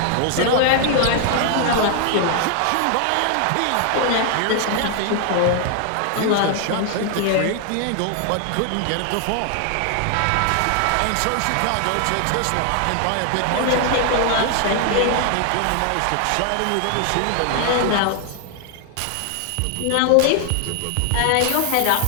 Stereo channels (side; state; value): both; different; correlation 0.00